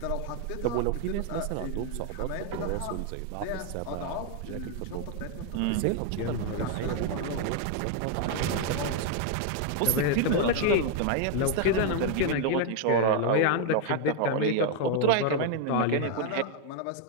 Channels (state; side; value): different; both; correlation 0.00